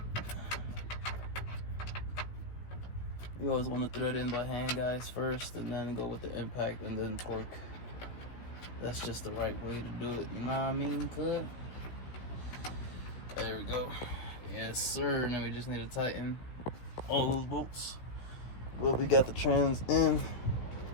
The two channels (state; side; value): late; right; 16 ms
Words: You always want to thread in by hand, guys, first, and then go with the impact and then torque. That's just the right way to do it, you know what I mean, cuz? There we go. Yes, sir. Now we just need to tighten all those bolts. Well, we got the trans in.